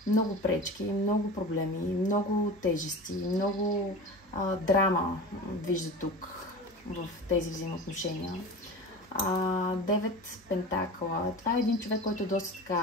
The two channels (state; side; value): normal; both; correlation 0.33